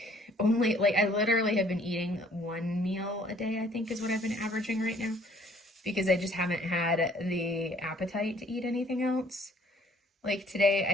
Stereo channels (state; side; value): normal; both; correlation 0.59